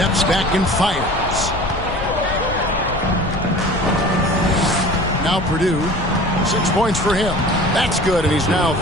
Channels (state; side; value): noise; left; rumble, 8 dB below the sound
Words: back and fires. Now Purdue, 6 points for him. That's good, and he's now